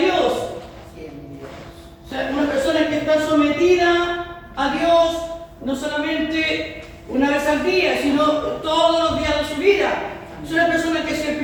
O sea, una persona que está sometida a Dios no solamente una vez al día, sino todos los días de su vida. Es una persona que se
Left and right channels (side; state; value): both; identical; correlation 1.00